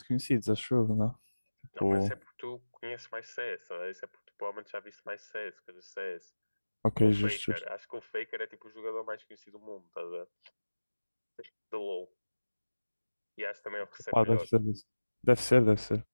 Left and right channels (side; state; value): both; inverted; correlation -1.00